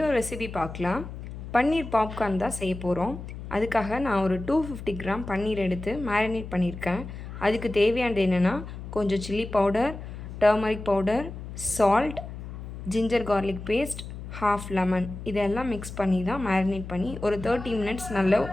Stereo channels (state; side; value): noise; left; hum, 10 dB below the sound